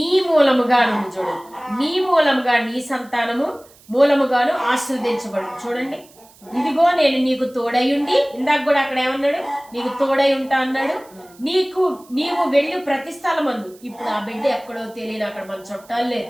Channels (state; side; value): noise; right; hiss, 26 dB below the sound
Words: మూలముగా ఉంది చూడండి. నీ మూలముగా నీ సంతానము మూలముగాను ఆశీర్వదించబడు. చూడండి, ఇదిగో నేను నీకు తోడయుండి, ఇందాక కూడా అక్కడ ఏమన్నాడు, నీకు తోడై ఉంటా అన్నాడు. నీవు వెళ్ళు ప్రతి స్థలమందు. ఇప్పుడు ఆ బిడ్డ ఎక్కడో తెలియని, అక్కడ మన చుట్టాలు